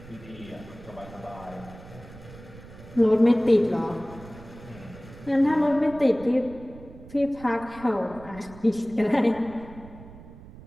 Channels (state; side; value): noise; right; rumble, 18 dB below the sound